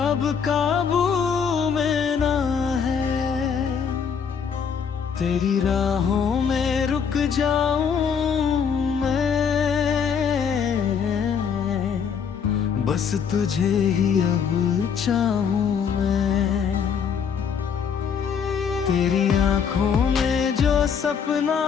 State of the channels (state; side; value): quieter; right; 6.9 dB